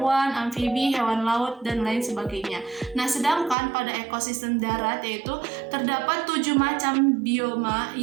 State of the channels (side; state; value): left; drops out; at 3.6 s